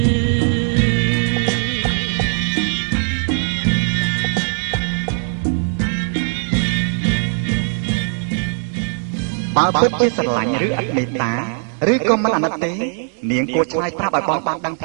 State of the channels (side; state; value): left; silent; 59 dB below the other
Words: បើពិតជាស្រឡាញ់ឬអត់មេត្តាឬក៏មិនអាណិតទេនាងគួរឆ្លើយប្រាប់ឲ្យបងបានដឹង